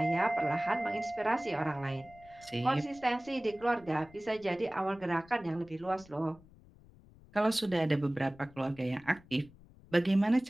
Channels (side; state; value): left; noise; rumble, 24 dB below the sound